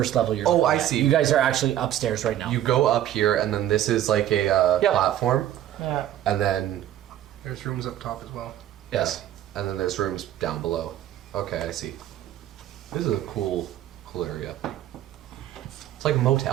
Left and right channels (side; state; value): left; quieter; 12.2 dB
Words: level you're Oh, looking I at. see. You guys are actually upstairs right now. You go up here, and then this is like a Yep. platform, Yeah. and then There's rooms up top as well. Yes. and then there's rooms down below. Okay, I see. This is a cool area. It's like a